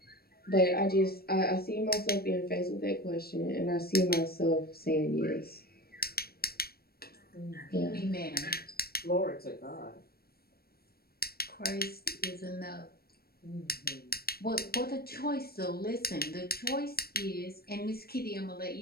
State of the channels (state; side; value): late; right; 0.44 ms